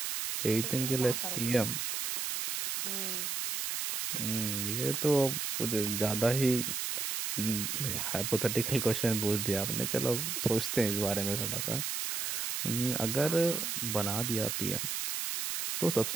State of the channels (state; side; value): noise; right; hiss, 1 dB below the sound